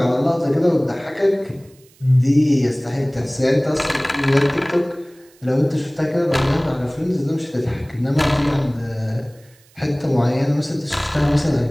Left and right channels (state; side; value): noise; right; hiss, 30 dB below the sound